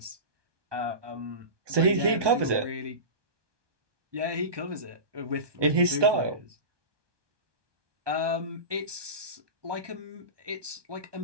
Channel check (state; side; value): late; left; 1.2 ms